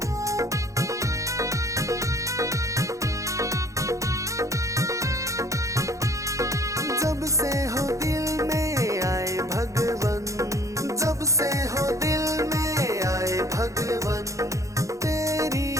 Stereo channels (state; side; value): late; left; 0.15 ms